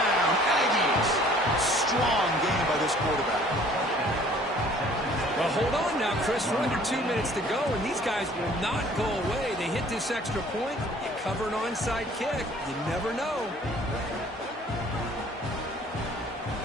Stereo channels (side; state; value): both; normal; correlation 0.54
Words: Aggies. Strong game by this quarterback. Well, hold on now, Chris. We're under 2 minutes to go, and these guys will not go away. They hit this extra point. You cover an onside kick. You never know.